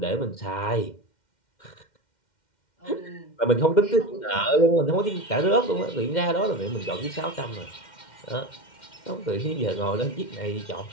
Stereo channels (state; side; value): late; right; 2.1 ms